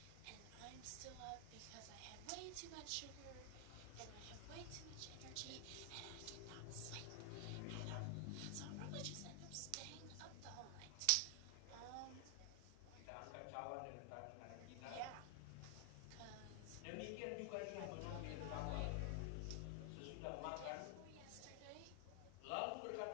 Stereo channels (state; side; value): different; both; correlation 0.00